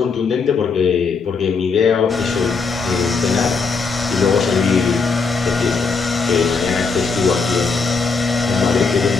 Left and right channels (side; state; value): right; quieter; 4.7 dB